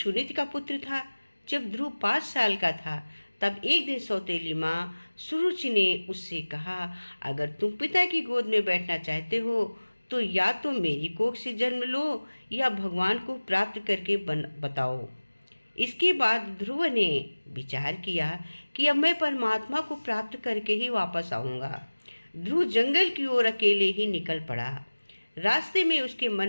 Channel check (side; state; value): both; inverted; correlation -1.00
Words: का पुत्र था। जब ध्रुव 5 साल का था तब एक दिन सौतेली माँ सुरुचि ने उससे कहा, अगर तुम पिता की गोद में बैठना चाहते हो तो या तो मेरी कोख से जन्म लो या भगवान को प्राप्त करके बताओ। इसके बाद ध्रुव ने विचार किया कि अब मैं परमात्मा को प्राप्त करके ही वापस आऊंगा। ध्रुव जंगल की ओर अकेले ही निकल पड़ा। रास्ते में उसके मन